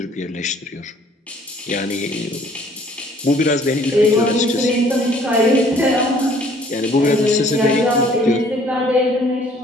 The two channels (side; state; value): both; normal; correlation 0.58